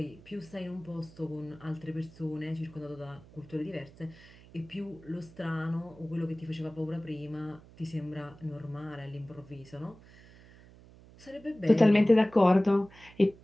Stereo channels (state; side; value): noise; right; hum, 22 dB below the sound